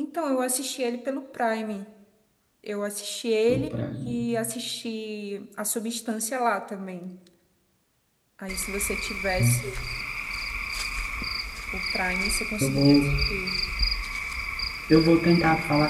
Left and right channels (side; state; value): both; identical; correlation 1.00